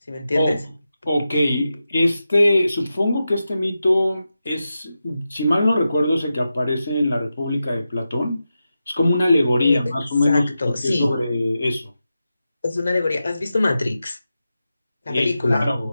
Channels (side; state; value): both; inverted; correlation -0.91